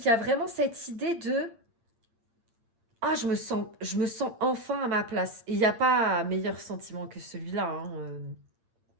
y a vraiment cette idée de « Ah, je me sens enfin à ma place ». Et il n'y a pas meilleur sentiment que celui-là. Hein.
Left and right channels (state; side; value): late; left; 8.8 ms